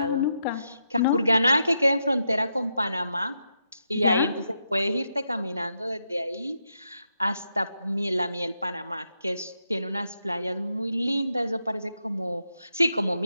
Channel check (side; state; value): both; inverted; correlation -0.83